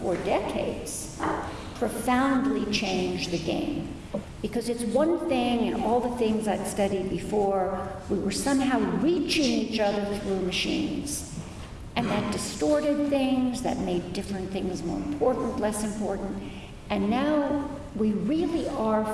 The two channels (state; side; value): identical; both; correlation 1.00